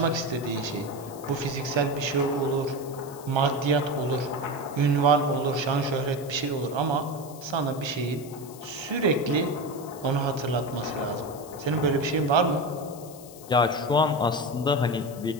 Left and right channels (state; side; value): noise; left; hiss, 19 dB below the sound